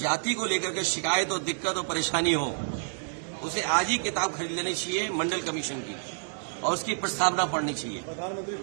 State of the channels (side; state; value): left; silent; digital silence